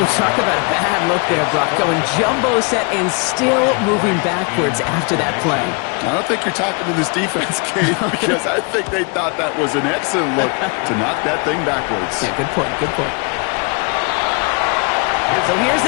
talk about a bad look there, Brock. Going jumbo set and still moving backwards after that play. I don't think you're talking to this defense, Kate, because I think they thought that was an excellent look to knock that thing backwards. Yeah, good point, good point. So here's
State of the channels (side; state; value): right; quieter; 32.8 dB